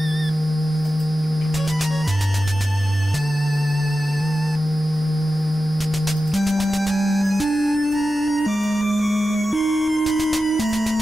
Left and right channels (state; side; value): noise; left; hum, 22 dB below the sound